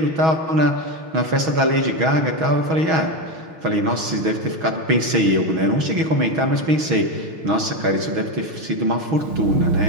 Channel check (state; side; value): late; left; 6.2 ms